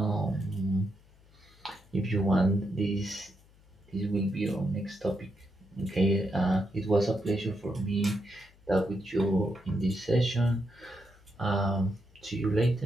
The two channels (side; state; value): left; noise; hum, 28 dB below the sound